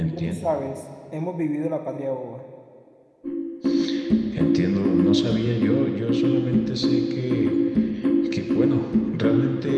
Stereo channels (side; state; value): both; identical; correlation 1.00